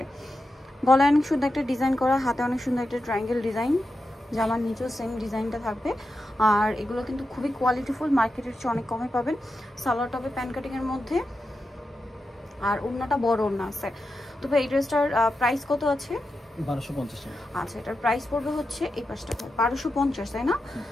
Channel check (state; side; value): normal; both; correlation 0.89